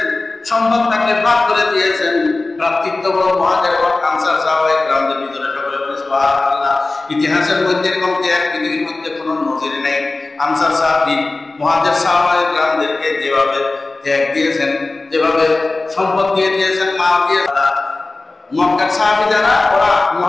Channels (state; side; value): quieter; right; 3.3 dB